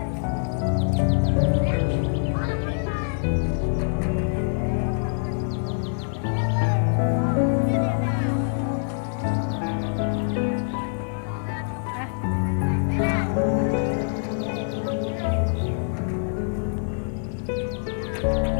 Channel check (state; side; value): silent; right; 62 dB below the other